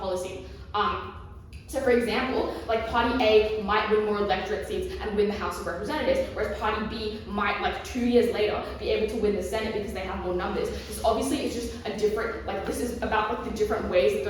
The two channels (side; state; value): both; identical; correlation 1.00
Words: So for example, Party A might win more electorate seats and win the House of Representatives, whereas Party B might, 2 years later, be able to win the Senate because they have more numbers. This obviously is just a different, this is about the different ways that